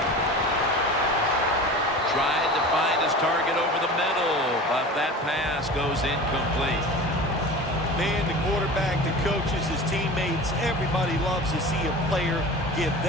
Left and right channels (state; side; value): normal; both; correlation 0.35